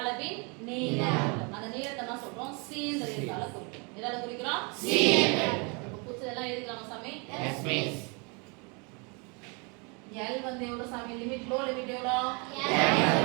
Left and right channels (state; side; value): quieter; left; 32.5 dB